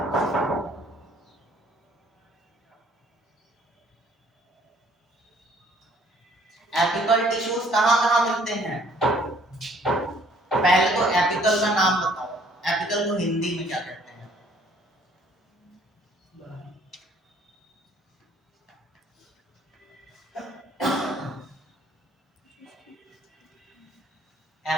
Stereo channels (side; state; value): both; normal; correlation 0.60